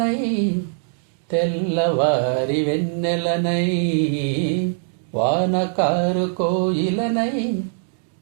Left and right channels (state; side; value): silent; left; digital silence